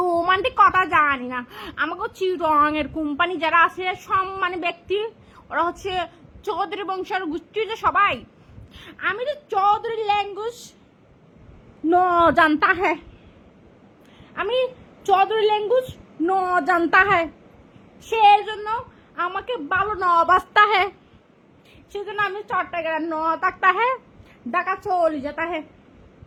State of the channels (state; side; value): identical; both; correlation 1.00